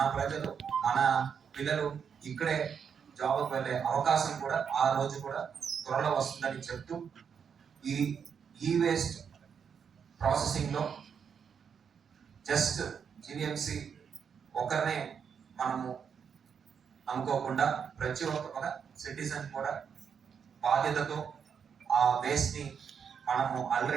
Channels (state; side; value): quieter; left; 7.0 dB